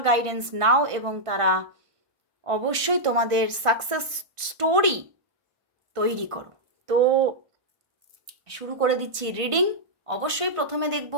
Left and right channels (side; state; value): left; late; 1.4 ms